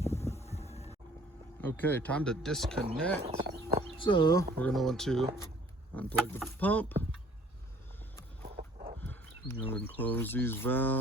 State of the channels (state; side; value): normal; both; correlation 0.55